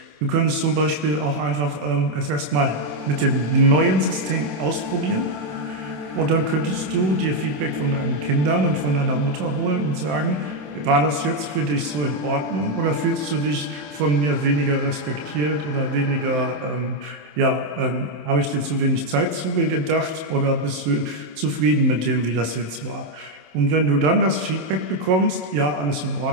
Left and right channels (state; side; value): late; left; 27 ms